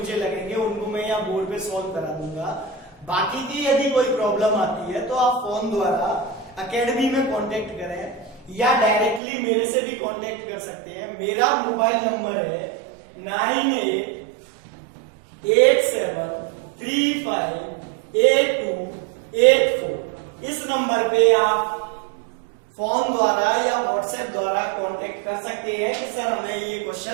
लगेंगे उनको मैं यहाँ बोर्ड पे सॉल्व करा दूंगा। बाकी की यदि कोई प्रॉब्लम आती है तो आप फोन द्वारा एकेडमी में कांटेक्ट करें या डायरेक्टली मेरे से भी कांटेक्ट कर सकते हैं। मेरा मोबाइल नंबर है 9887358284। इस नंबर पे आप फोन द्वारा या व्हाट्सएप द्वारा कांटेक्ट कर सकते हैं कि सर हमें ये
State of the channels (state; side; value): drops out; left; at 9.2 s